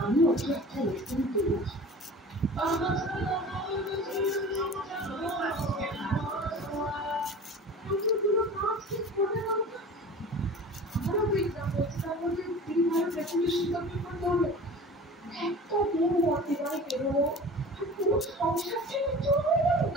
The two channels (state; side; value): normal; both; correlation 0.39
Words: আমি ওকে একটা লেসন দিয়েছি।